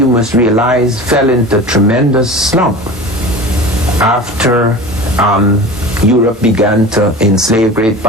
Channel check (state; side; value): normal; both; correlation 0.35